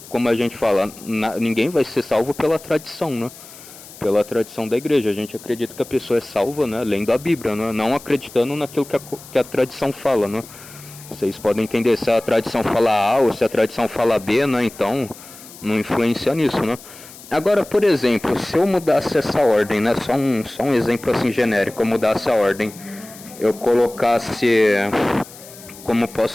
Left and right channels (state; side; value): noise; left; hiss, 18 dB below the sound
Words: Como a gente fala, ninguém vai ser salvo pela tradição, né? Pela tradição da igreja. A gente acredita que a pessoa é salva, né? Lendo a Bíblia, né? Não acreditando naquilo que a tradição fala, né? Vocês podem entender se a tradição fala A ou se a tradição fala B, né? Então, não influencia nisso, né? Agora, por exemplo, se eu mudasse essa ordem, né? Só um exemplo assim genérico, eu mudasse a ordem, eu colocasse, como posso